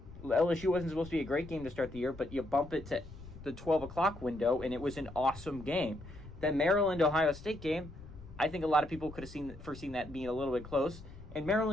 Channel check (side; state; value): left; noise; rumble, 16 dB below the sound